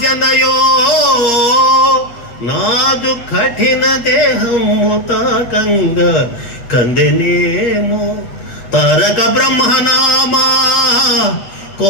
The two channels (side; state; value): right; late; 8.5 ms